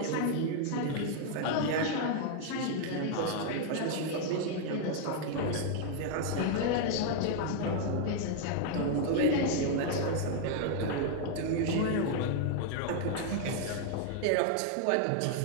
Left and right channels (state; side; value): different; both; correlation 0.00